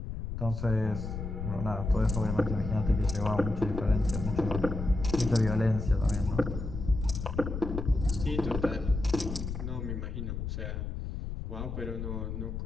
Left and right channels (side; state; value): left; noise; rumble, 5 dB below the sound